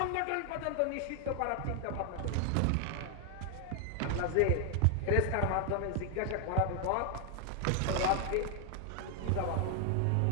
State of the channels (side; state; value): both; different; correlation 0.00